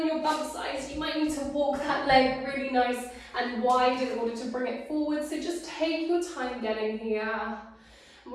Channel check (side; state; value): both; identical; correlation 1.00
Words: your bump size, you might need to walk that leg really nice and wide in order to bring it forward. So just take your time getting here. And